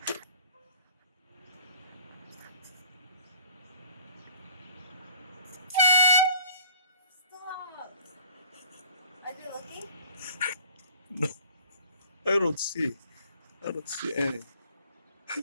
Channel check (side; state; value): both; inverted; correlation -0.52